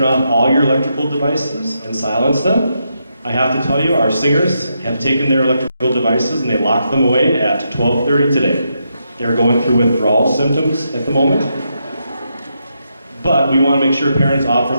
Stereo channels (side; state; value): both; inverted; correlation -0.82